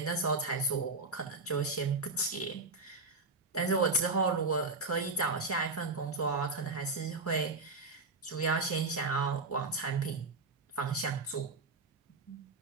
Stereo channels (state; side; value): quieter; left; 3.6 dB